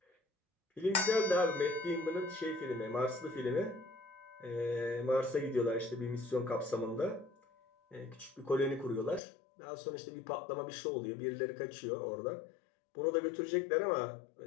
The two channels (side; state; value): right; drops out; at 9.2 s